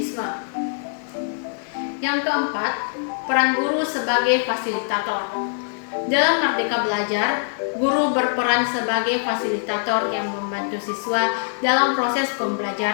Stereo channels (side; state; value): right; silent; digital silence